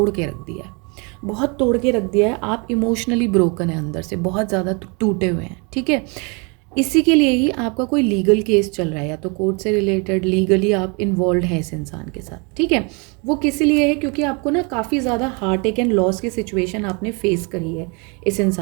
के रख दिया है, बहुत तोड़ के रख दिया है। आप इमोशनली ब्रोकन है, अंदर से बहुत ज़्यादा टूटे हुए हैं। ठीक है, इसी के लिए ही आपका कोई लीगल केस चल रहा है, या तो कोर्ट से रिलेटेड लीगली आप इन्वॉल्व हैं इस इंसान के साथ। ठीक है, वो किस लिए है? क्योंकि आपको ना काफ़ी ज़्यादा हार्ट अटैक एंड लॉस की सिचुएशन आपने फेस करी है इस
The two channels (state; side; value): quieter; left; 31.9 dB